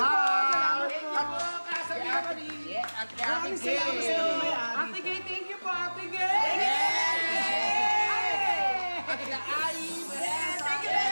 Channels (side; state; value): both; inverted; correlation -1.00